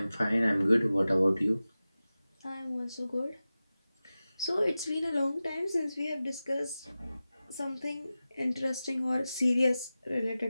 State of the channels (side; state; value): both; inverted; correlation -0.95